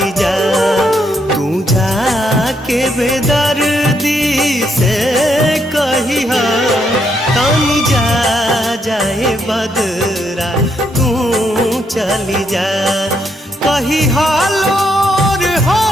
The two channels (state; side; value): normal; both; correlation 0.76